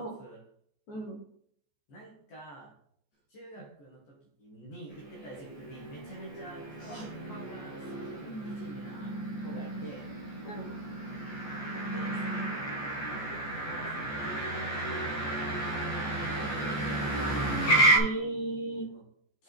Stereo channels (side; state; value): right; late; 14 ms